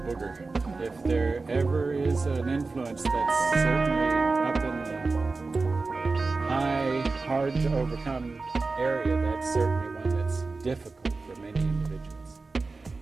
If there ever is an influence that's certainly up in the high, hard to overcome area, that's certainly one that's difficult for many individuals.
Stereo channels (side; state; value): left; quieter; 3.9 dB